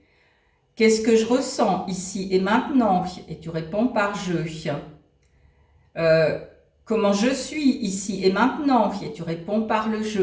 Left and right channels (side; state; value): both; identical; correlation 1.00